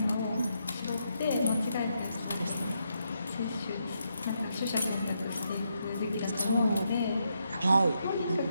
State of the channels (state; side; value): inverted; both; correlation -0.80